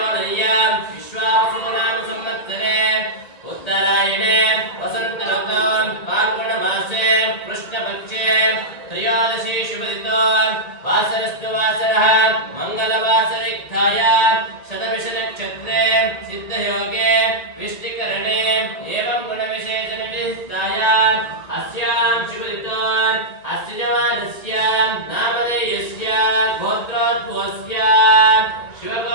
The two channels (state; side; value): late; right; 1.9 ms